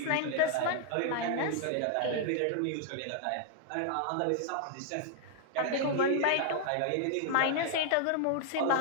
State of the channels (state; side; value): different; both; correlation 0.00